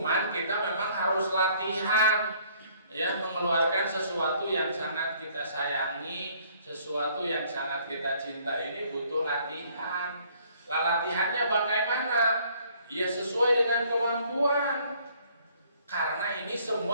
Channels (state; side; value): inverted; both; correlation -0.61